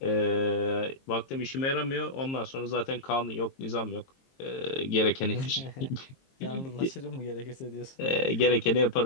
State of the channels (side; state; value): right; late; 22 ms